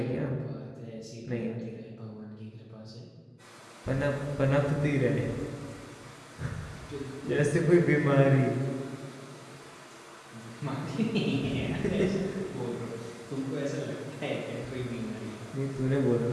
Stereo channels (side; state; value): both; identical; correlation 1.00